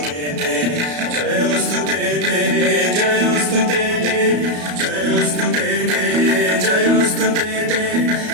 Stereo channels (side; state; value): left; late; 34 ms